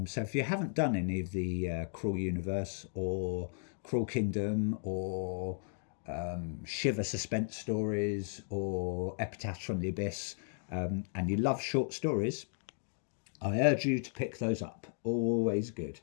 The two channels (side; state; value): right; silent; digital silence